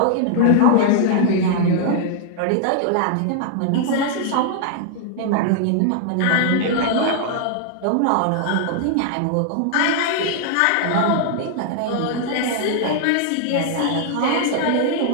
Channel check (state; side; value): different; both; correlation 0.00